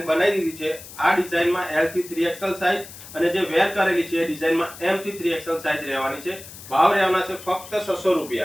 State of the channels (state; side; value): noise; left; hiss, 16 dB below the sound